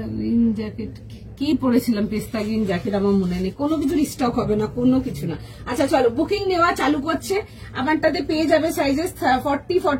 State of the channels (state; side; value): identical; both; correlation 1.00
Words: গ্রিন জ্যাকেট কি পরেছিলাম, পিস্তা গ্রিন জ্যাকেট আমার মনে নেই, কোনো কিছুর স্টক হবে না, কোনো কিছু না। আচ্ছা চলো বুকিং নেওয়া চালু করছে। আমারটাতে পেয়ে যাবে সাইজেস 40,